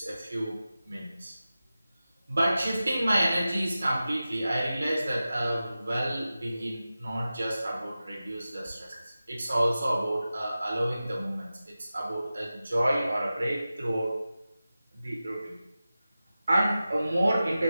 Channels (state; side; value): inverted; both; correlation -0.95